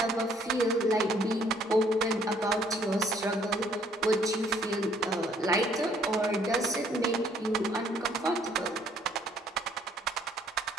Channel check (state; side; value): normal; both; correlation 0.62